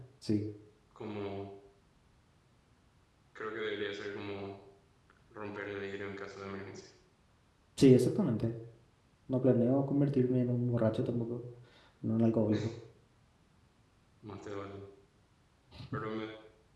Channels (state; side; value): identical; both; correlation 1.00